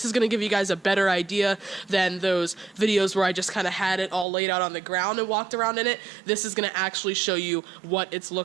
is going to give you guys a better idea than those videos where I just kind of had it all laid out on the ground and walked around in it. This is going to actually show you what it's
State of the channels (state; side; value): drops out; left; at 4.2 s